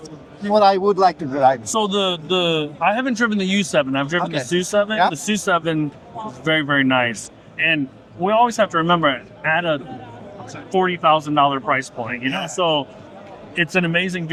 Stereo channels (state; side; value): identical; both; correlation 1.00